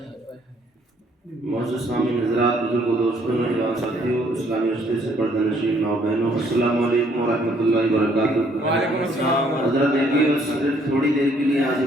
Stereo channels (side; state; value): both; normal; correlation 0.65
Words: سامعین حضرات، بزرگوں، دوستوں، نوجوان ساتھیوں، اسلامی رشتے سے پردہ نشین ماؤ بہنوں، السلام علیکم ورحمۃ اللہ وبرکاتہ۔ وعلیکم السلام۔ حضرت دیکھیے، بس صرف تھوڑی دیر کے لیے حاضر